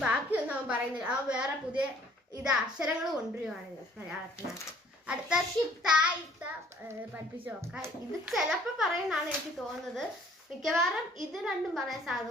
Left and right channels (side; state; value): both; normal; correlation 0.57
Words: ബാക്കിയൊന്നും അവൻ പറയുന്നില്ല. അവൻ വേറെ പുതിയ അക്ഷരങ്ങൾ കൊണ്ടുവരുവാണ് മലയാളത്തിനകത്ത്. അടുത്ത ഷിപ്തായിട്ട പഠിപ്പിച്ചു നോക്കാം. ഇത് ചിലപ്പോ പറയുന്നതാണ് എനിക്ക് തോന്നുന്നത്. മിക്കവാറും ഇത് രണ്ടും പറയാൻ സാധ്യത